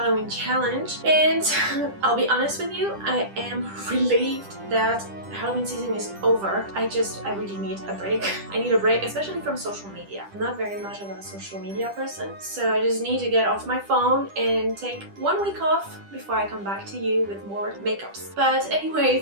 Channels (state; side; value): late; left; 10 ms